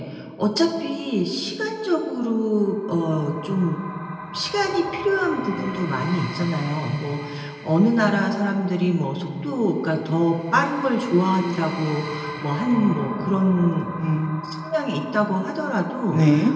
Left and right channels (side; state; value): both; identical; correlation 1.00